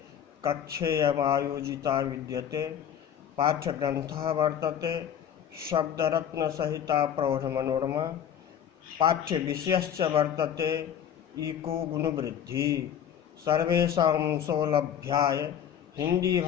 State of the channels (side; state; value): right; quieter; 9.2 dB